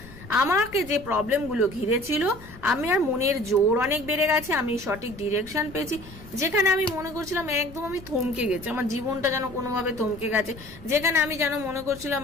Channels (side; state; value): left; noise; rumble, 18 dB below the sound